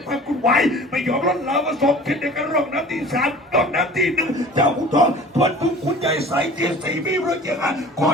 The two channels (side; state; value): both; normal; correlation 0.43